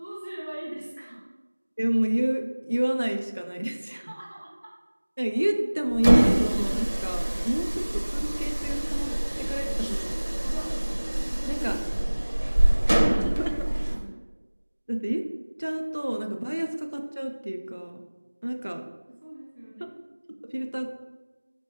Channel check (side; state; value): both; inverted; correlation -1.00